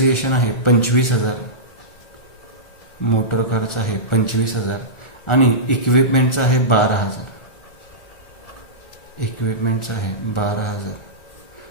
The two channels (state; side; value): late; right; 1.4 ms